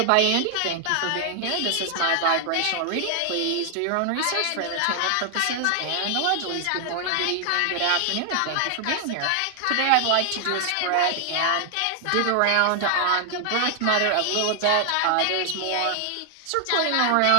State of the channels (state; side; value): different; both; correlation 0.00